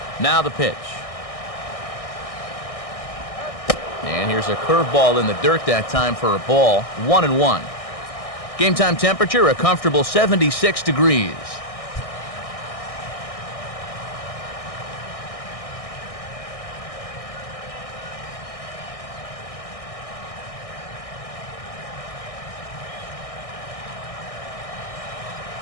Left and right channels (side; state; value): right; late; 1.6 ms